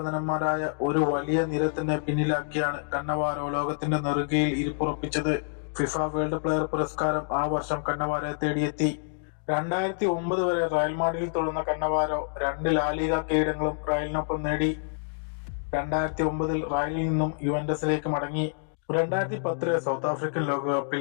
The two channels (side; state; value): right; silent; digital silence